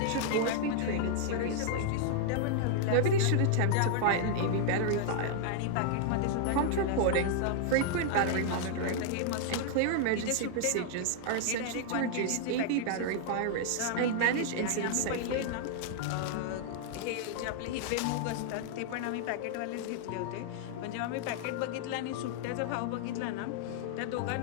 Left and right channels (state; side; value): different; both; correlation -0.01